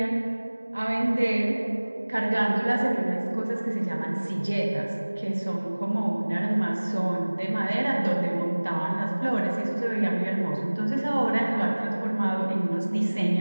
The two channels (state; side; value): inverted; both; correlation -1.00